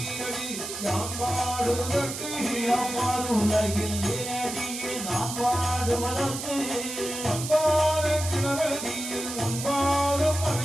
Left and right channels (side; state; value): right; noise; hiss, 7 dB below the sound